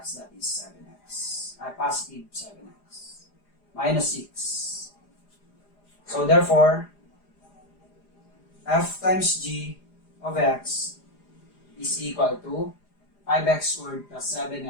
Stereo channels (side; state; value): right; late; 4.9 ms